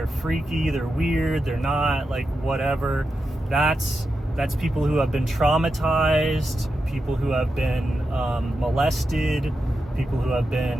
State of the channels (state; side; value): normal; both; correlation 0.88